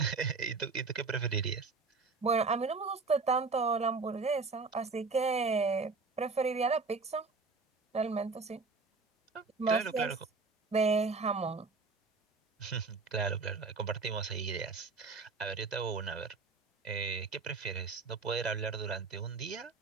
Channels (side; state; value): left; quieter; 4.3 dB